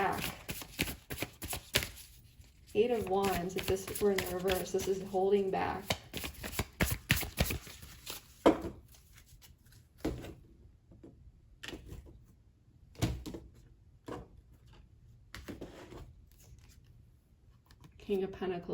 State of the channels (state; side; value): identical; both; correlation 1.00